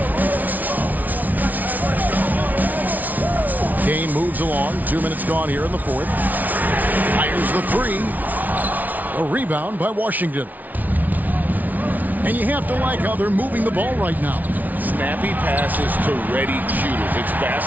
Game moves along. 2 minutes gone here in the fourth. Fires the 3. A rebound by Washington. And you have to like how they're moving the ball right now. Snappy passes to ready shooters. It's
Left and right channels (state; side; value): late; left; 0.078 ms